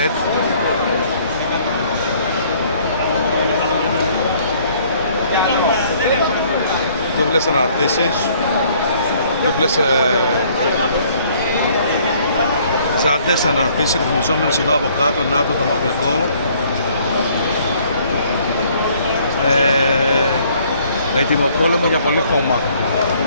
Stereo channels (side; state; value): both; inverted; correlation -0.60